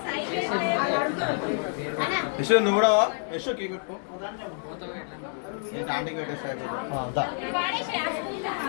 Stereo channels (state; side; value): silent; right; 58 dB below the other